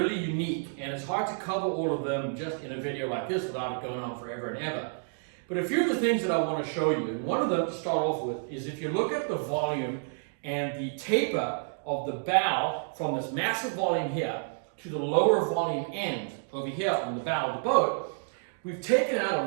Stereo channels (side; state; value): left; silent; digital silence